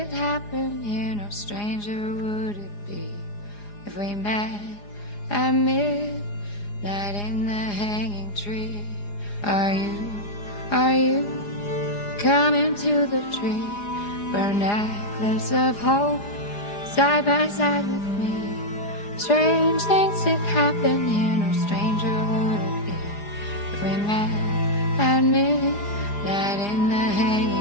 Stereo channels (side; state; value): right; late; 4.9 ms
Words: happen here, no stranger would it be if we met at midnight in the hanging tree. Are you coming to the tree where a necklace of hope side by side with me? Strange things did happen here, no stranger would it be if we met at midnight in the